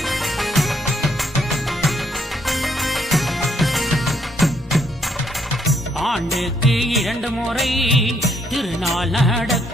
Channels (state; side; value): normal; both; correlation 0.72